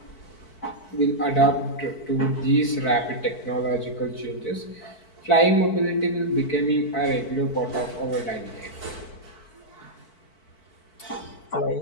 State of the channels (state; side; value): late; right; 4.5 ms